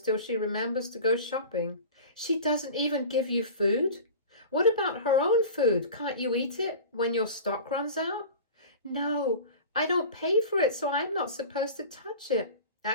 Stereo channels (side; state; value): both; inverted; correlation -0.36